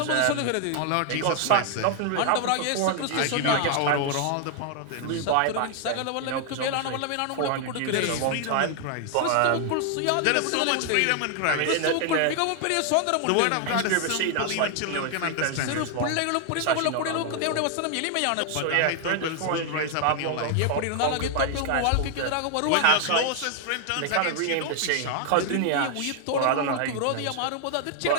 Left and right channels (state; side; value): different; both; correlation 0.00